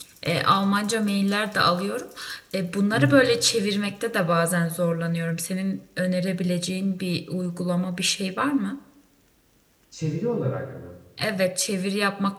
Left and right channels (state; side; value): identical; both; correlation 1.00